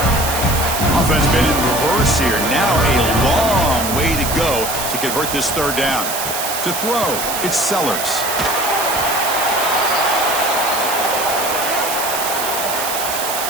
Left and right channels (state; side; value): noise; right; hiss, 4 dB below the sound